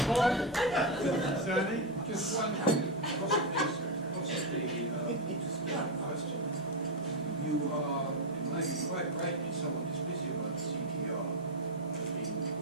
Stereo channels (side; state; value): both; normal; correlation 0.05